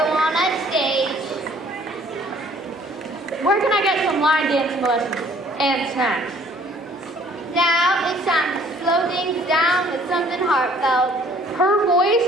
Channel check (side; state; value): both; normal; correlation 0.58